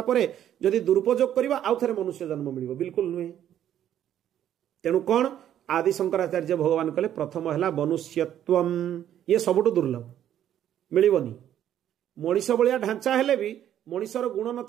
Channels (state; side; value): quieter; left; 10.8 dB